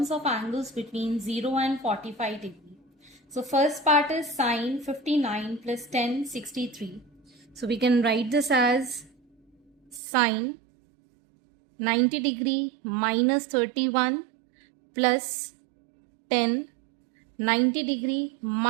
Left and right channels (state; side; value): drops out; left; at 10.0 s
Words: of angles between 0 and 45 degree. So first part is sin 59 plus 10 63. So we can write this as sin 90 degree minus 31 plus 10 90 degree